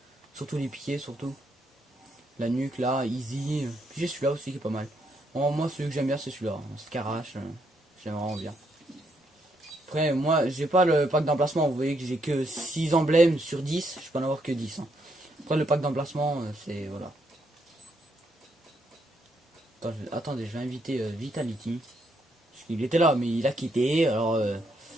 Surtout les piquets, surtout. La nuque, là, easy. Puis j'ai celui-là aussi qui est pas mal. Bon, moi, celui que j'aime bien, c'est celui-là. Scarache, j'aime vraiment bien. Après, moi, j'ai pas le pack d'emplacement. Vous voyez que j'ai que 6 emblèmes sur 10. Je peux en avoir que 10. Hein. Après, le pack d'emplacement, c'est... Voilà. Attendez, je vais inviter Vitality. Parce qu'il était là, mais il a quitté. Alors,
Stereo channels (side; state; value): both; normal; correlation 0.75